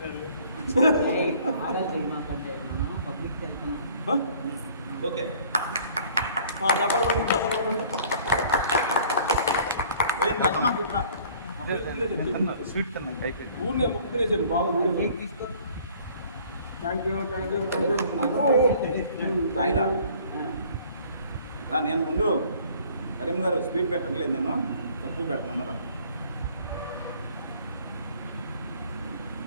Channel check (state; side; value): inverted; both; correlation -0.54